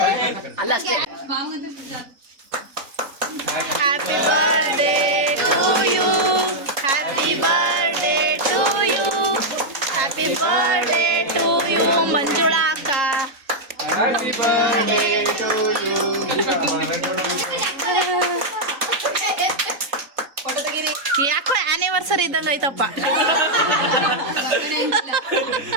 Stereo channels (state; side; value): late; left; 3.7 ms